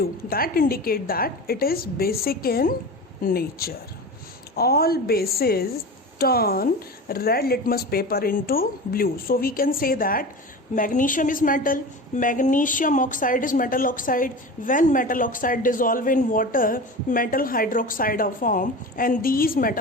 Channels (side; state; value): both; normal; correlation 0.30